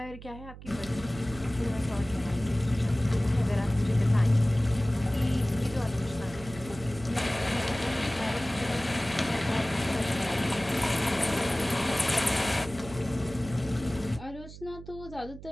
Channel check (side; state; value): right; noise; hum, 15 dB below the sound